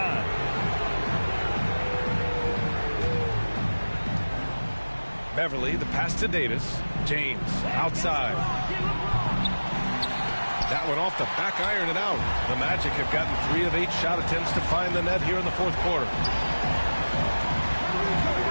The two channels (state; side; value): inverted; both; correlation -1.00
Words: Beverly, the pass to Davis. James, outside. That one off the back iron and out. The Magic have gotten 3 of 8 shot attempts to find the net here in the fourth quarter.